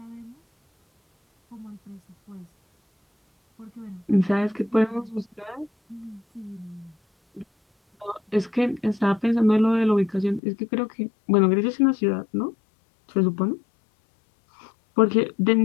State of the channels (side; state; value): right; drops out; at 10.4 s